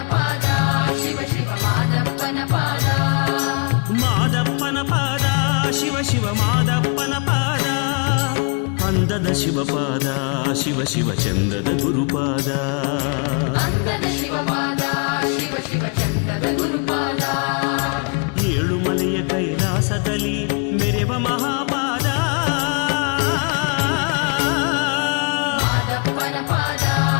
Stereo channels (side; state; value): right; quieter; 35.8 dB